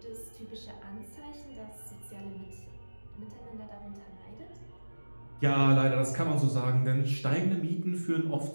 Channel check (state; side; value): inverted; both; correlation -1.00